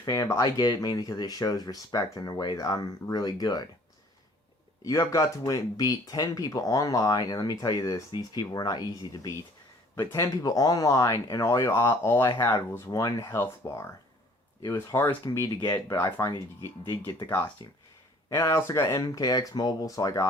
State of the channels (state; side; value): normal; both; correlation 0.55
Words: fan, but I get it mainly because it shows respect in a way that I'm really good. You have got to beat 10 people online, and let me tell you this, these people were not easy to beat. But 10 people online, and all I had was one health bar. It was hard as can be to get, but I finally did get the costume. And I also got MKX Mobile, so I